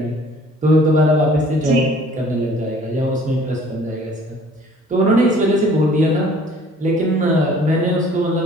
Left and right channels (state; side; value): normal; both; correlation 0.54